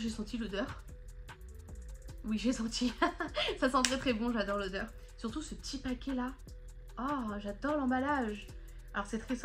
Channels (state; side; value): identical; both; correlation 1.00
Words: senti l'odeur? Oui, j'ai senti. Ça sent très très bon, j'adore l'odeur. Surtout ce petit paquet là. Oh, j'adore l'emballage. Alors c'est très